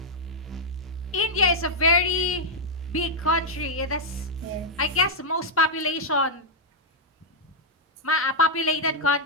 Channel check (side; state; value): both; normal; correlation -0.04